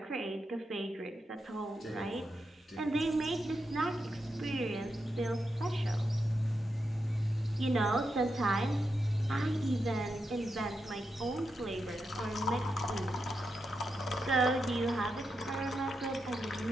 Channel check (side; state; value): both; normal; correlation 0.86